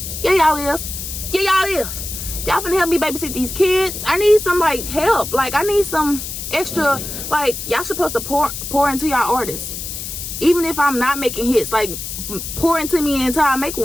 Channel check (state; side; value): noise; left; hiss, 7 dB below the sound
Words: Yeah, y'all is. Yeah, y'all is. Y'all finna help me babysit these kids. I need some, like, help. Like, I need some extra, like, y'all supposed to pour into y'all artists. Even if I'm not making hits, like, pour into me until I make